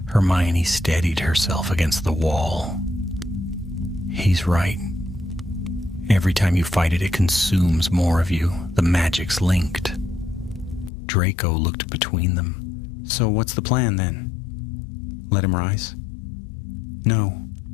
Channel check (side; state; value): right; drops out; at 10.9 s